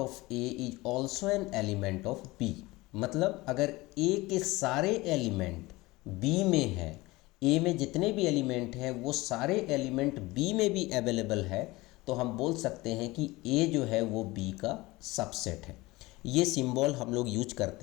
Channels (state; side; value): quieter; right; 20.9 dB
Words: A is also an element of B. मतलब अगर ए के सारे एलिमेंट बी में है, ए में जितने भी एलिमेंट हैं वो सारे एलिमेंट बी में भी अवेलेबल है, तो हम बोल सकते हैं कि ए जो है वो बी का सबसेट है। ये सिंबल हम लोग यूज